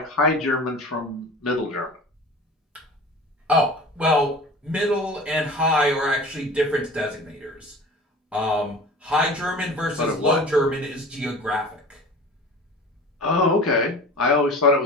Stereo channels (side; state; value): both; normal; correlation 0.38